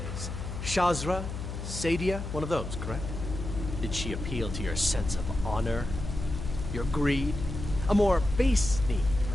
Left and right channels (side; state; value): left; noise; hum, 6 dB below the sound